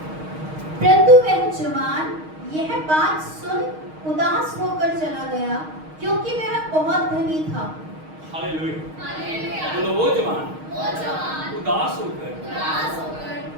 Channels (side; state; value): left; late; 6.4 ms